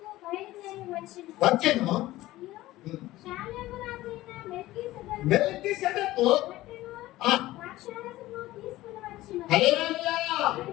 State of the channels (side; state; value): right; quieter; 16.8 dB